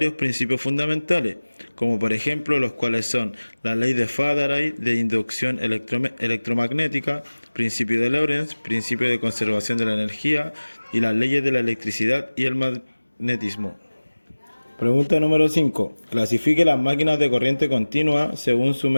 principios fundamentales, como por ejemplo los cuales son la ley de Faraday de inducción electromagnética, principio de Lorentz, principio de conservación de la energía y las leyes de la electricidad y el magnetismo. Pregunta número 5. Clasifique las máquinas de corriente continua según su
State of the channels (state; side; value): inverted; both; correlation -1.00